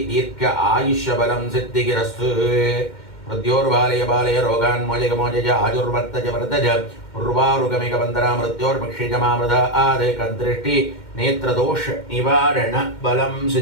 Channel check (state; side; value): late; right; 2.1 ms